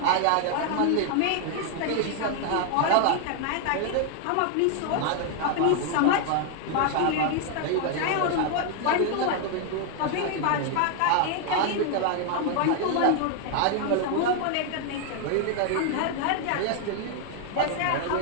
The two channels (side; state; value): both; different; correlation 0.00